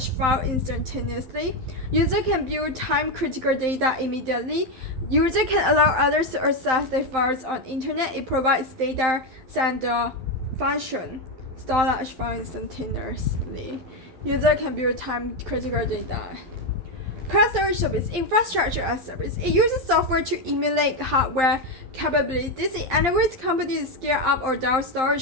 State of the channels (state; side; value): late; left; 11 ms